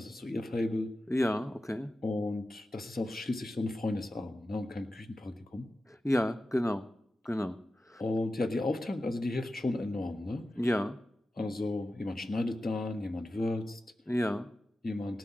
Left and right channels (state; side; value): normal; both; correlation 0.93